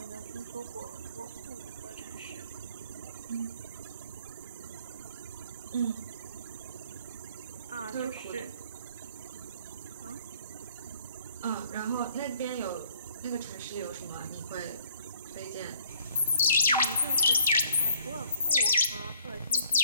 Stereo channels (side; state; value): both; inverted; correlation -0.61